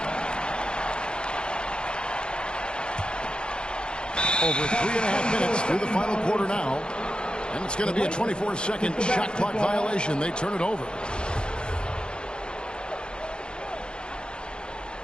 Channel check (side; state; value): right; late; 0.050 ms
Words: Over 3.5 minutes through the final quarter now. And it's going to be a 24-second shot clock violation. They turn it over.